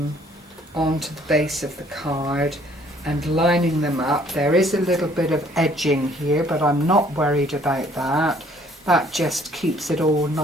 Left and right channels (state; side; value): normal; both; correlation 0.60